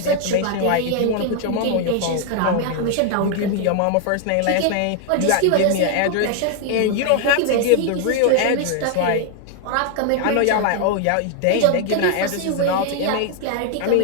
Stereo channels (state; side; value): different; both; correlation 0.00